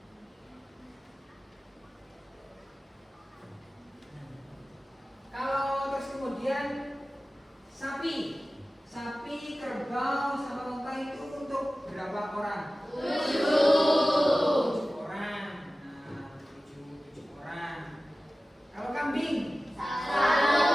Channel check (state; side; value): normal; both; correlation 0.96